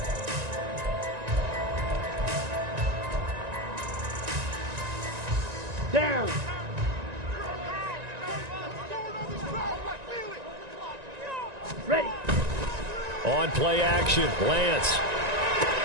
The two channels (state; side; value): late; left; 1.9 ms